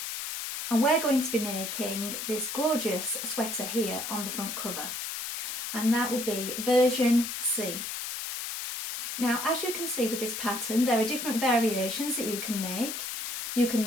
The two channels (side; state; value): left; noise; hiss, 5 dB below the sound